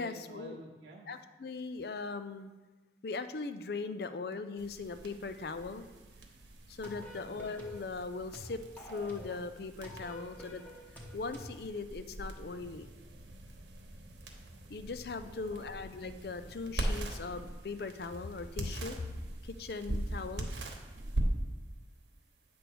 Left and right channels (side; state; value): both; normal; correlation 0.51